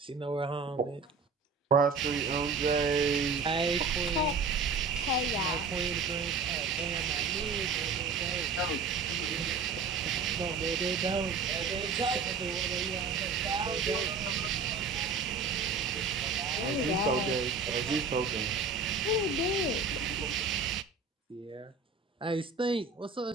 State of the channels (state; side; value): quieter; left; 4.7 dB